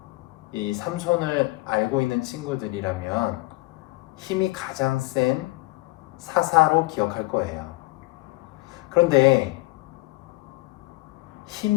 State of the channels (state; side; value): quieter; right; 21.3 dB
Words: 이 삼손을 알고 있는 친구들이라면 힘이 가장 센 사사로 기억할 거예요. 그런데